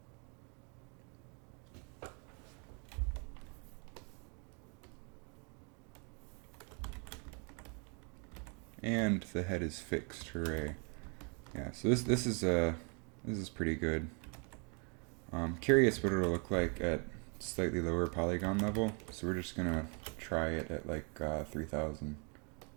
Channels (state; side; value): quieter; left; 35.9 dB